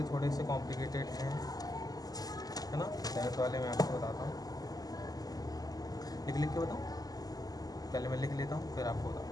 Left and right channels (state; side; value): late; right; 0.18 ms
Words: थोड़े से कॉम्प्लिकेटेड हैं, है ना। 7th वाले मैं आपको बताता हूँ, लिख के बताऊँ, पहले मैं लिख लेता हूँ फिर आपको बताता